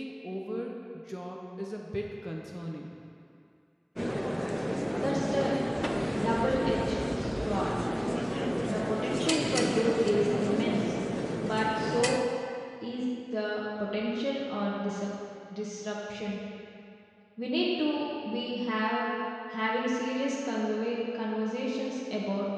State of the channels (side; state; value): both; identical; correlation 1.00